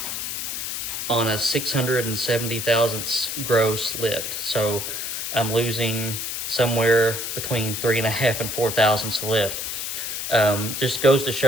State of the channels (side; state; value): left; noise; hiss, 4 dB below the sound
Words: on a 670 thousandths gross lift. So I'm losing somewhere between 3.5 and 4 thousandths lift. Just goes to